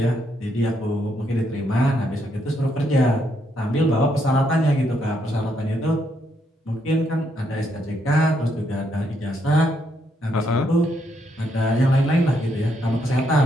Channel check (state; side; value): normal; both; correlation 0.76